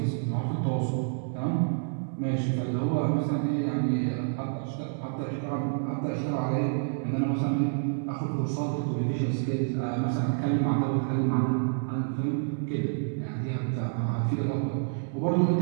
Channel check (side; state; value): left; silent; digital silence